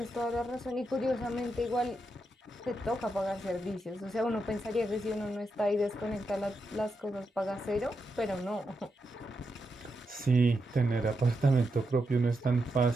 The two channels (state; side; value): normal; both; correlation 0.85